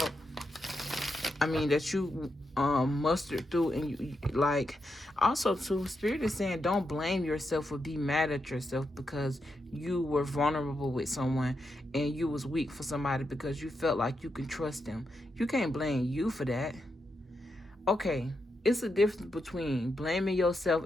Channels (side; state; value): both; normal; correlation 0.84